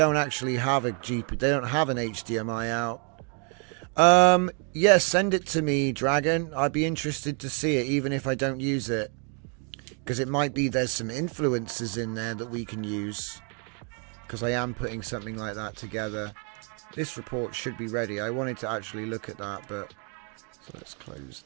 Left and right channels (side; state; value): left; quieter; 38.7 dB